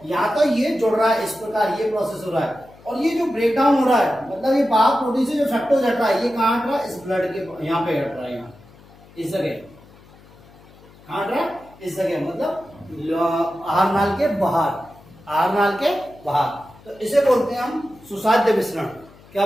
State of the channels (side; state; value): left; noise; hum, 25 dB below the sound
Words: यहाँ तो ये जुड़ रहा है, इस प्रकार ये प्रोसेस हो रहा है। और ये जो ब्रेकडाउन हो रहा है, मतलब ये वाहक प्रोटीन से जो फ्रक्टोज हट रहा है, ये कहाँ हट रहा है, इस ब्लड के यहाँ पे हट रहा है, यहाँ इस जगह कहाँ हट रहा है, इस जगह, मतलब आहार नाल के बाहर, आहार नाल के बाहर। तो इसे बोलते हैं हम सुसाध्य विसरण। क्या